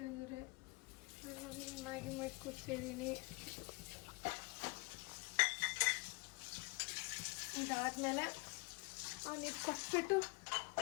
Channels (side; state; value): right; quieter; 27.2 dB